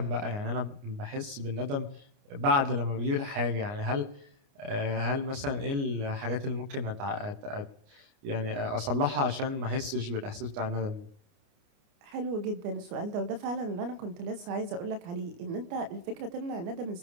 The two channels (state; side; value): late; left; 29 ms